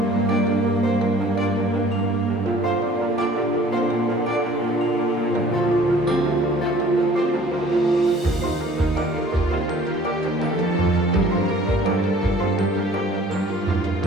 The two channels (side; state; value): both; normal; correlation 0.52